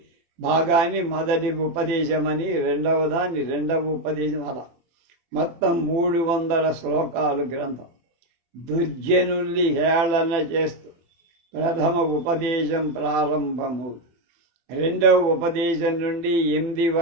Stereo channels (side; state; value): left; late; 24 ms